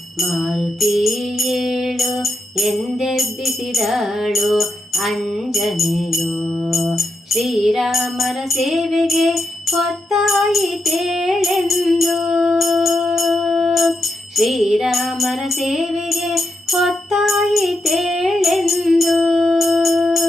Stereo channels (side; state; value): both; normal; correlation 0.83